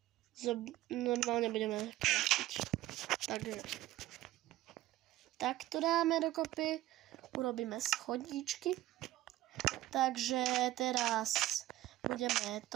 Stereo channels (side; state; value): left; quieter; 15.7 dB